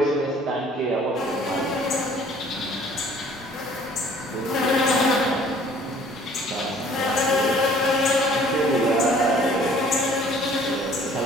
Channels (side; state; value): both; normal; correlation 0.55